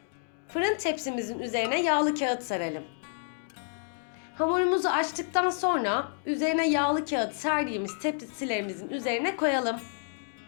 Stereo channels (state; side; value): silent; right; digital silence